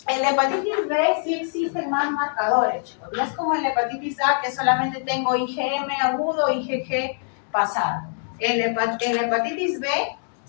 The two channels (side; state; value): right; silent; 63 dB below the other